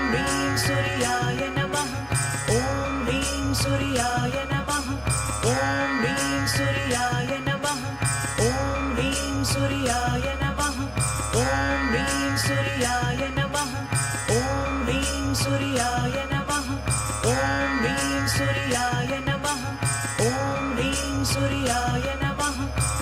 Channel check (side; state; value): both; identical; correlation 1.00